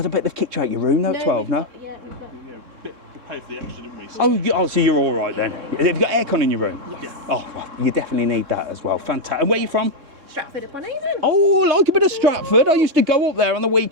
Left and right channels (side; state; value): left; late; 3.6 ms